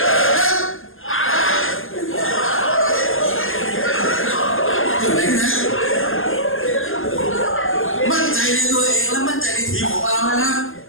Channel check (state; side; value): late; right; 0.59 ms